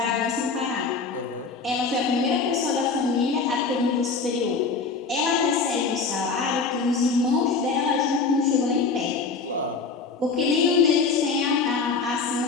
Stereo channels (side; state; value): right; quieter; 4.7 dB